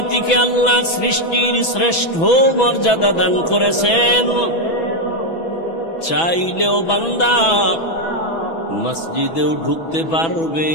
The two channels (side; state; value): right; late; 6.1 ms